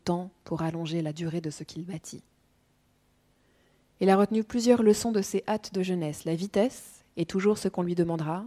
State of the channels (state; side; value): identical; both; correlation 1.00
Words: pour allonger la durée de ce qu'il bâtit. Il a retenu plusieurs leçons de ses hâtes de jeunesse. La vitesse est toujours ce qu'on lui demandera.